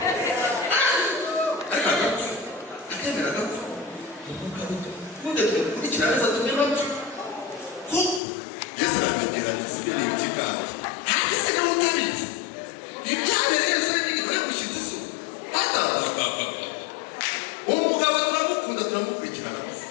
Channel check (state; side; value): drops out; right; at 8.2 s